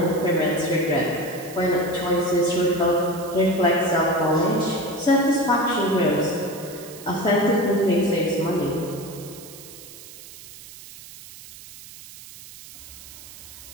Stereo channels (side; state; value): right; noise; hiss, 17 dB below the sound